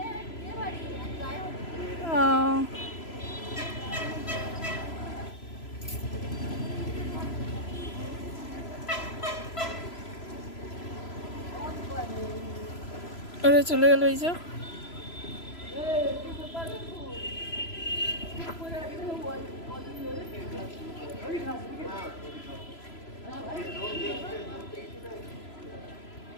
ওরা চলে গেল। এই যে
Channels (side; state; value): right; late; 3.0 ms